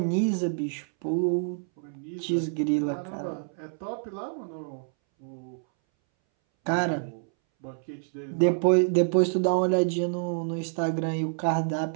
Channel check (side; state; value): left; silent; 60 dB below the other